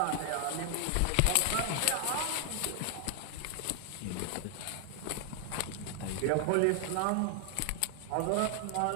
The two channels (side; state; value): both; different; correlation 0.00